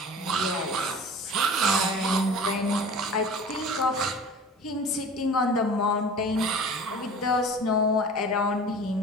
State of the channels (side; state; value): both; normal; correlation 0.40